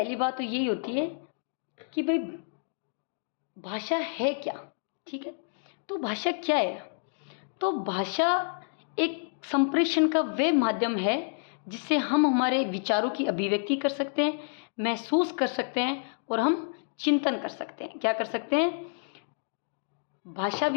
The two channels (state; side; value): silent; right; digital silence